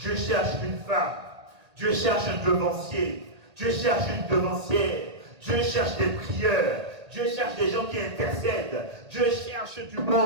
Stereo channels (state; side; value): late; left; 1.8 ms